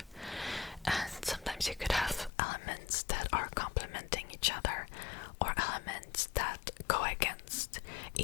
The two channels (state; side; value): drops out; right; at 2.3 s